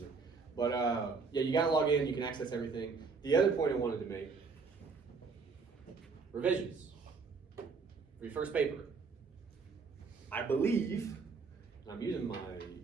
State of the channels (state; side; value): quieter; left; 4.8 dB